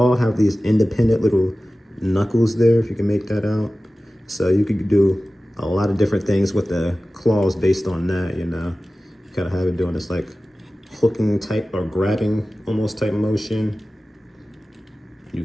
have these independent little knuckles there, if you can make that out. So you could do a lot of different things with the claws based on that, you know. Kind of have it doing this like hooking type or grabbing almost type motion. You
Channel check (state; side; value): normal; both; correlation 0.96